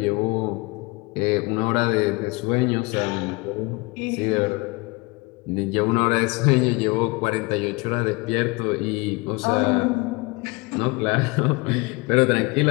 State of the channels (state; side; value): quieter; right; 26.0 dB